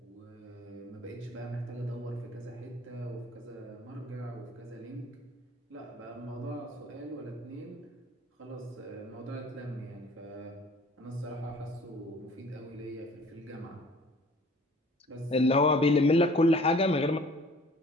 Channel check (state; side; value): normal; both; correlation 0.51